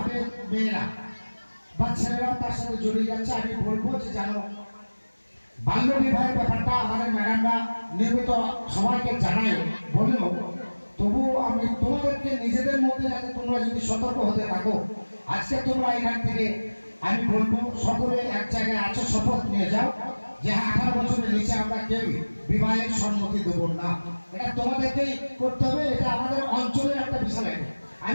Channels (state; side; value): inverted; both; correlation -1.00